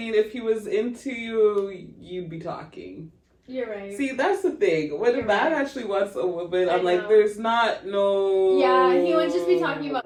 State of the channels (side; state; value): both; identical; correlation 1.00